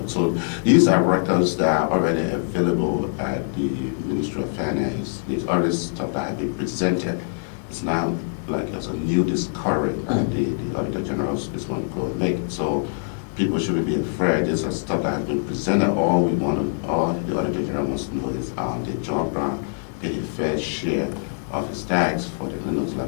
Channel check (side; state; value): right; silent; digital silence